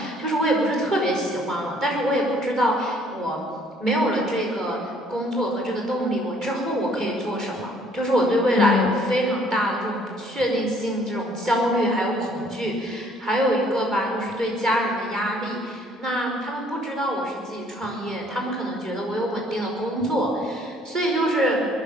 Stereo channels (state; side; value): normal; both; correlation 0.61